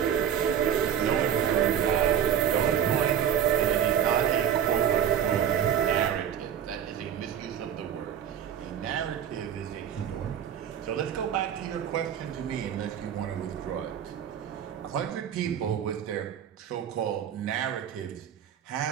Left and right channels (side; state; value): left; quieter; 9.2 dB